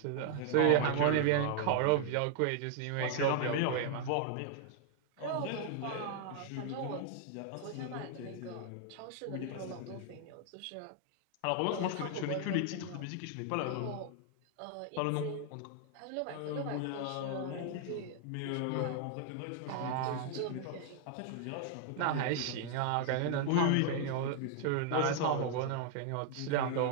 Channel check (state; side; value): different; both; correlation 0.00